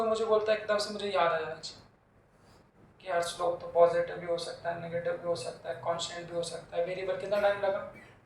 मुझे बोलता है एकदम से मुझे याद आ जाना चाहिए कि यार स्लोप तो पॉजिटिव भी हो सकता है, नेगेटिव भी हो सकता है, कांस्टेंट भी हो सकता है, वेरिएबल। कितना टाइम लगा?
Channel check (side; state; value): both; identical; correlation 1.00